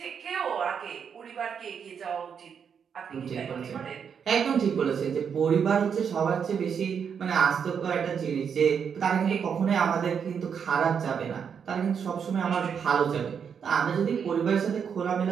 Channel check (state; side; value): quieter; left; 7.1 dB